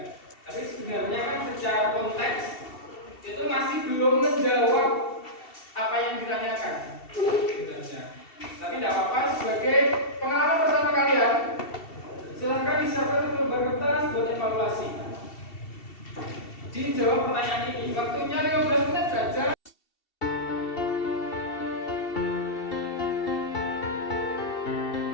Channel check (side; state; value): right; late; 2.7 ms